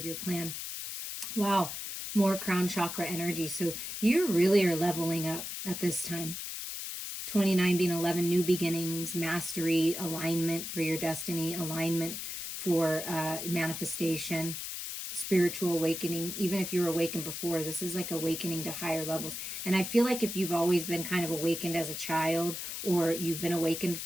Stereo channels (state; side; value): noise; left; hiss, 6 dB below the sound